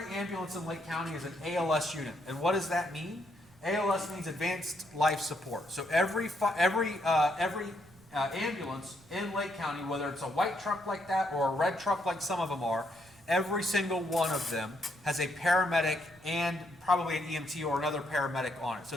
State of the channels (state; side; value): noise; right; rumble, 27 dB below the sound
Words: ambulance in Lake County is an ALS unit. And what does that mean? ALS means advanced life support. So every ambulance in Lake County, whether it's a white truck like that or a red truck like some of them are, every single one of them has a paramedic and probably an EMT or another paramedic on it. So